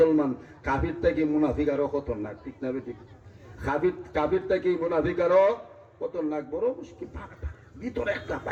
কাফির থেকে মুনাফিক আরো খতরনাক, ঠিক না? ঠিক। কাফির থেকে মুনাফিক আরো খতরনাক, বড় মুশকিল। ভিতরে একটা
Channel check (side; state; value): both; identical; correlation 1.00